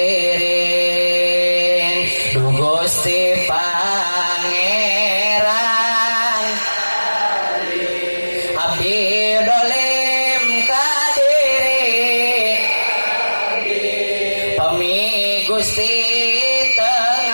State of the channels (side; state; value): both; inverted; correlation -1.00